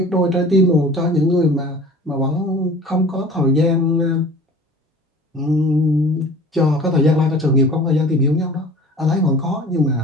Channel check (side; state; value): both; normal; correlation 0.44